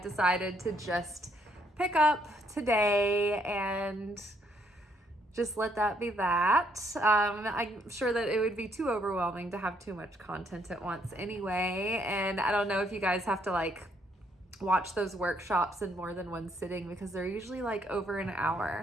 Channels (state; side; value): normal; both; correlation 0.70